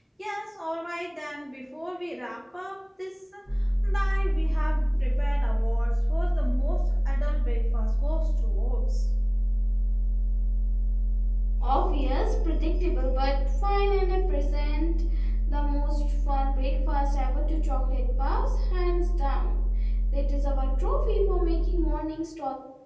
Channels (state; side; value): identical; both; correlation 1.00